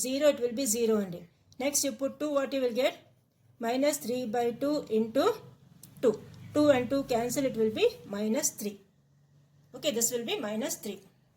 it will be 0 only. Next you put 2, what you will get? Minus 3 by 2 into 2. 2 and 2 cancel, it will be minus 3. Okay, this will be minus 3.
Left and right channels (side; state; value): both; identical; correlation 1.00